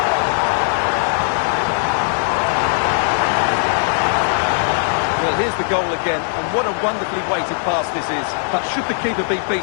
Well, here's the goal again, and what a wonderfully weighted pass this is. But should the keeper be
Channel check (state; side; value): silent; right; 58 dB below the other